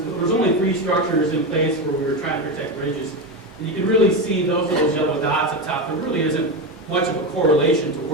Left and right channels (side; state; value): both; normal; correlation 0.16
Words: only 3 structures in place where we were trying to protect ridges. And you can really see those yellow dots up top. There really isn't much of a correlation to